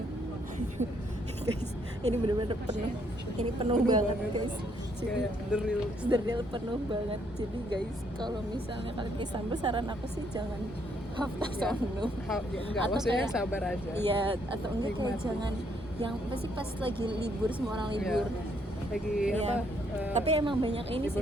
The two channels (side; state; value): both; normal; correlation 0.71